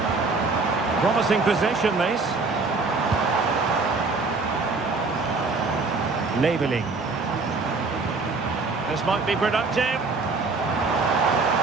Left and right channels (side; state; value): left; quieter; 3.9 dB